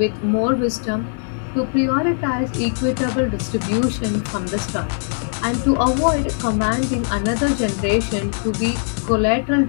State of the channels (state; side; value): silent; right; digital silence